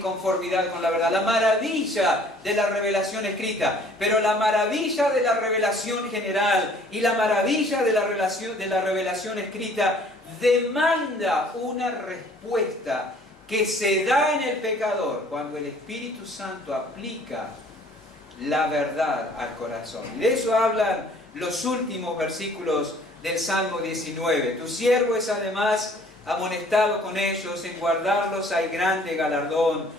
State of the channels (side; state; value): both; normal; correlation 0.55